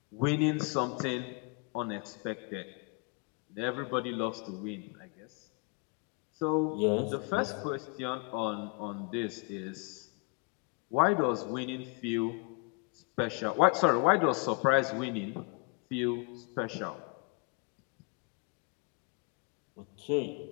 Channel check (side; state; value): right; quieter; 30.4 dB